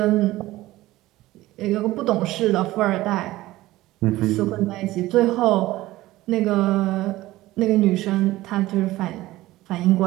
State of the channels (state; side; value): quieter; left; 17.1 dB